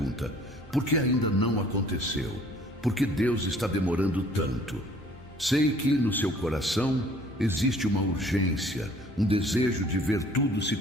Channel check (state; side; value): normal; both; correlation 0.55